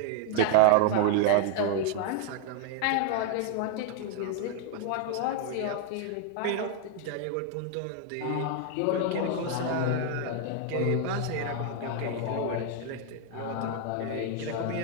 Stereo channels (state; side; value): different; both; correlation 0.00